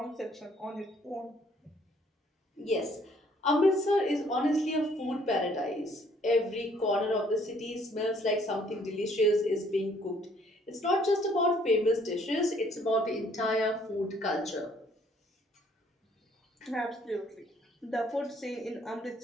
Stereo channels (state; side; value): normal; both; correlation 0.62